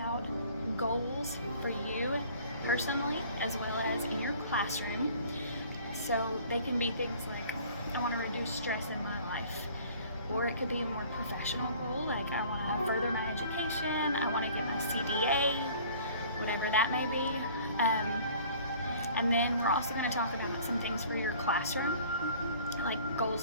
goals for you personally as well as in your classroom. So they can be things like, I want to reduce stress in my life, or it could be a more professional goal, like I want to further my education, I want to get my CDA, whatever that may be. And then we're also going to talk about some things for your classroom, like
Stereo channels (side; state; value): both; inverted; correlation -0.50